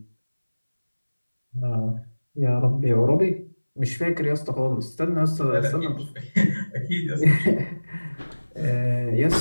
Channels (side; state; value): both; inverted; correlation -1.00